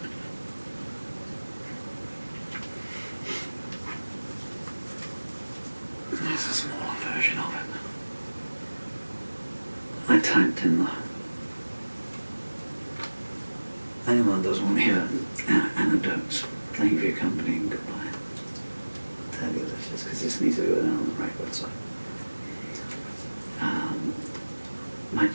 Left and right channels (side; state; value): both; inverted; correlation -1.00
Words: There's a smaller version of it. I typed in anyone doesn't want to hear anecdotes. Thank you for your company and goodbye. I'll tell you this just because this needs to go down on the record. So, my